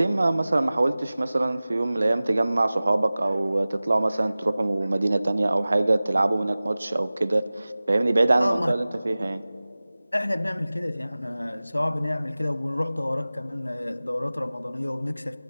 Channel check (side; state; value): both; inverted; correlation -0.98